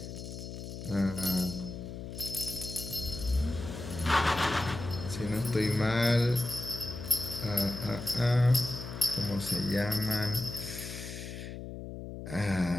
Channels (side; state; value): left; noise; hum, 9 dB below the sound